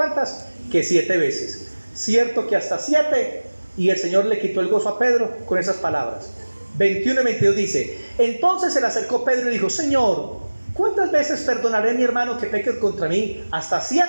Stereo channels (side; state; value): both; inverted; correlation -1.00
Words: Que 7 veces. Cierto que hasta 7. Y el Señor le quitó el gozo a Pedro con esas palabras. 21 y 22 dice, entonces se le acercó Pedro y dijo, Señor, ¿cuántas veces perdonaré a mi hermano que peque contra mí? Hasta